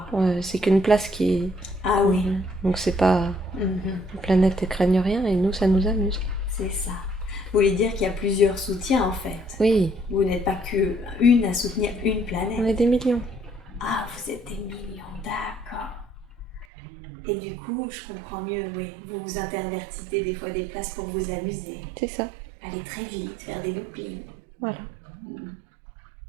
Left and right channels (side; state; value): left; drops out; at 16.7 s